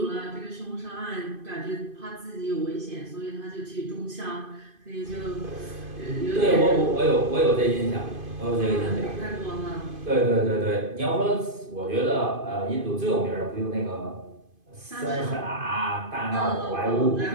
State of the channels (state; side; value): late; left; 2.5 ms